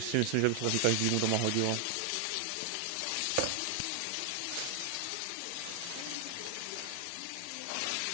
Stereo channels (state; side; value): different; both; correlation 0.00